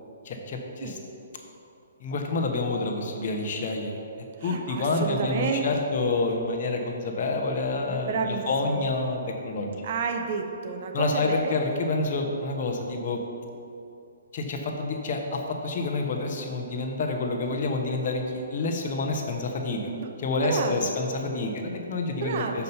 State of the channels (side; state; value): both; inverted; correlation -0.38